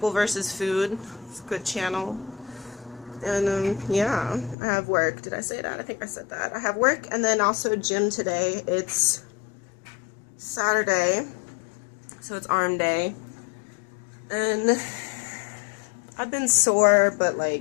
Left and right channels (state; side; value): drops out; right; at 4.5 s